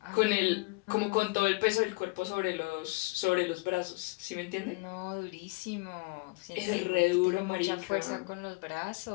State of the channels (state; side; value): quieter; right; 26.6 dB